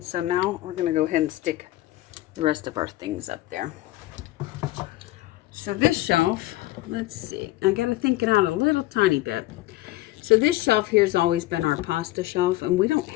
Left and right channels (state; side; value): quieter; right; 17.1 dB